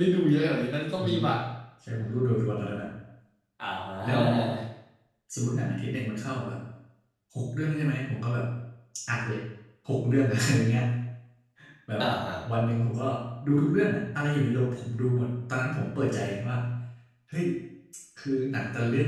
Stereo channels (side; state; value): both; identical; correlation 1.00